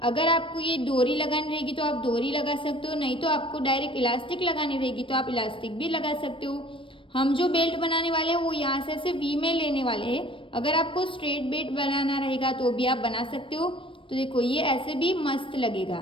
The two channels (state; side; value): late; right; 0.25 ms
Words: अगर आपको ये डोरी लगानी रहेगी तो आप डोरी लगा सकते हो, नहीं तो आपको डायरेक्ट इलास्टिक लगानी रहेगी तो आप इलास्टिक भी लगा सकते हो। हम जो बेल्ट बनाने वाले हैं वो यहाँ से ऐसे वी में लेने वाले हैं। अगर आपको स्ट्रेट बेल्ट बनाना रहेगा तो भी आप बना सकते हो। तो देखो ये ऐसे भी मस्त